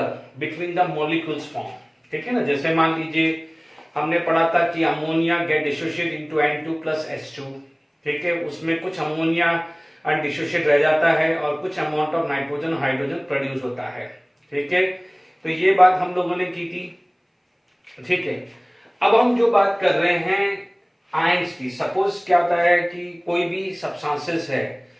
between the molecules form. ठीक है ना, जैसे मान लीजिए हमने पढ़ा था कि ammonia get dissociate into N2 plus H2। ठीक है, उसमें कुछ अमोनिया अनडिसोशिएट रह जाता है और कुछ amount of nitrogen hydrogen produce होता है। ठीक है, तो ये बात हम लोगों ने की थी। ठीक है, अब हम जो बात कर रहे हैं आयंस की। सपोज क्या होता है कि कोई भी सब्सटेंसेस है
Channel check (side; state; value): both; identical; correlation 1.00